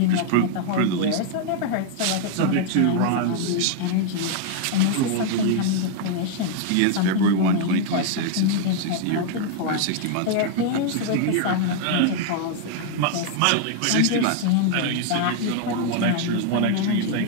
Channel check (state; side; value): different; both; correlation 0.00